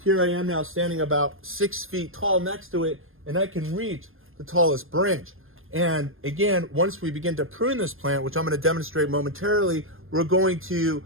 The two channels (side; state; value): left; late; 0.60 ms